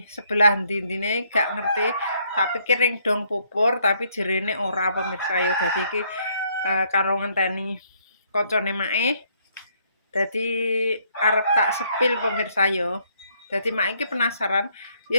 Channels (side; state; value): both; inverted; correlation -0.69